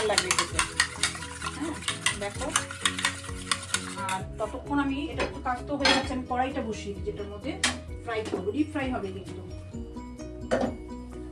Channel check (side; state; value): both; identical; correlation 1.00